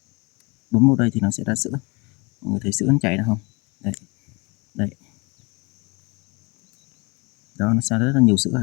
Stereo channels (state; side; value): quieter; right; 28.0 dB